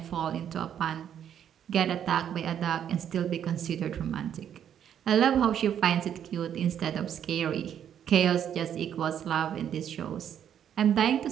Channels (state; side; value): quieter; left; 9.4 dB